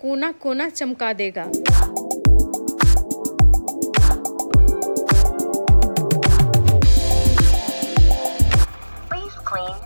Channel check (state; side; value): inverted; both; correlation -1.00